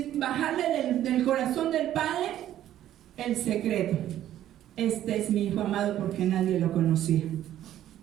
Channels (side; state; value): left; quieter; 12.2 dB